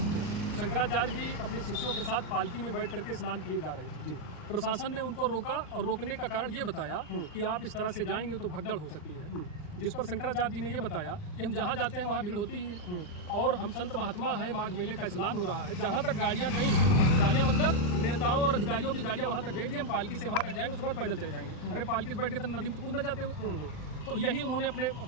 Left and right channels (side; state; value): right; late; 39 ms